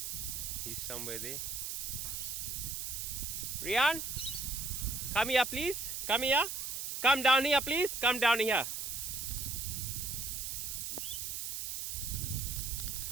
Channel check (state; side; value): noise; right; hiss, 4 dB below the sound